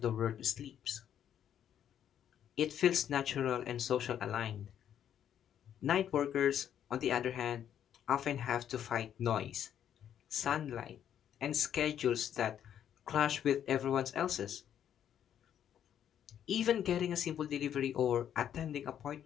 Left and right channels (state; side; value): quieter; right; 9.7 dB